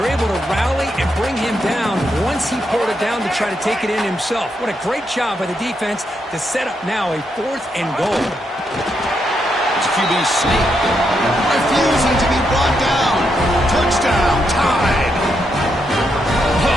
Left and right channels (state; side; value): normal; both; correlation 0.80